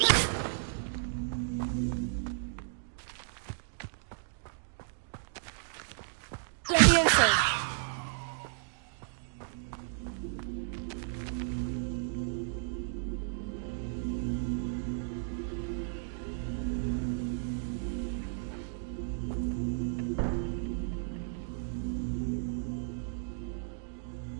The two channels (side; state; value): left; silent; digital silence